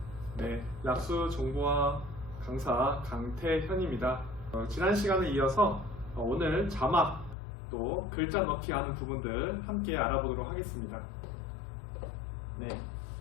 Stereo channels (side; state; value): right; drops out; at 7.4 s